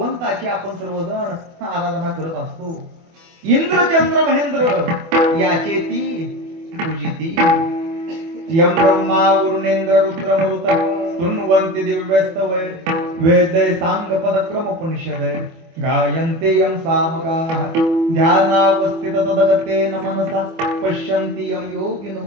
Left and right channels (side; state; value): left; late; 24 ms